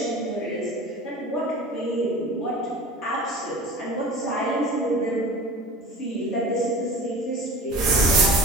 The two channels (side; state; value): both; normal; correlation 0.38